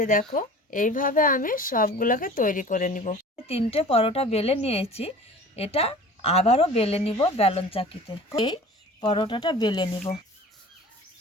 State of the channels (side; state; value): both; normal; correlation 0.42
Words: দেখো এইভাবে আমি সবগুলোকে তৈরি করে নিব। 3টে পরোটা বেলে নিয়েছি। এটা আবারও বেলে নিব বেলন চাকিতে। এই পরোটাটা বেলে নিব।